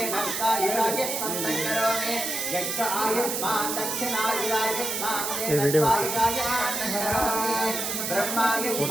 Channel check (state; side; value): noise; right; hiss, 2 dB below the sound